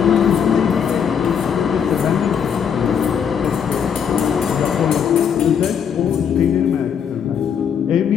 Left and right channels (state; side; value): quieter; right; 7.6 dB